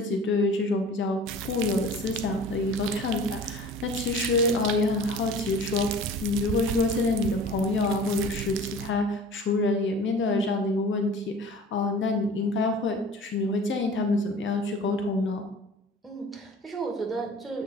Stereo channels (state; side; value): normal; both; correlation 0.42